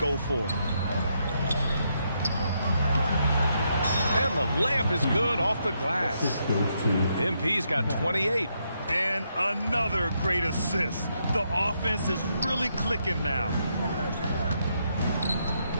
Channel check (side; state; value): both; inverted; correlation -0.78